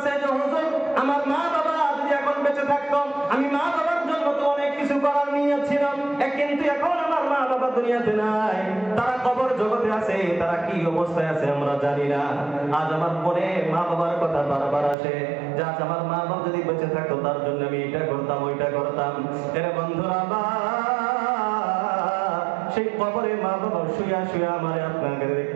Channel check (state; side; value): drops out; left; at 15.0 s